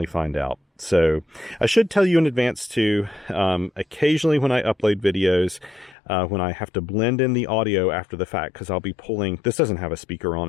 find out. So I should tell you in advance too, occasionally when I upload videos, when I have to blend in the audio after the fact, because I'll be pulling, this doesn't have a speaker on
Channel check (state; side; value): drops out; right; at 6.0 s